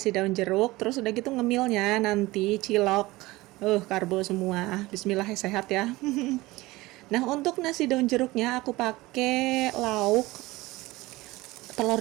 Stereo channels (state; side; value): quieter; left; 19.9 dB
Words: daun jeruk, terus udah gitu ngemilnya nanti cilok. Karbo semua. Bismillah sehat ya. Nah, untuk nasi daun jeruknya aku pakai lauk telur